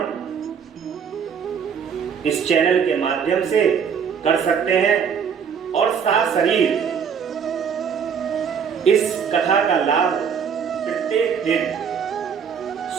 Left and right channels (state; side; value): quieter; left; 7.1 dB